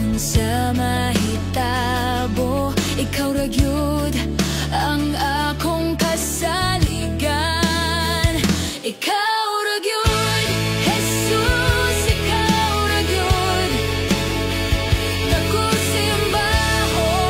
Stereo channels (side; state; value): both; identical; correlation 1.00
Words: mahitabo, ikaw ra gyud ang akong kasaligan. Ikaw ra gyud, Jesus, ikaw ra gyud. Dako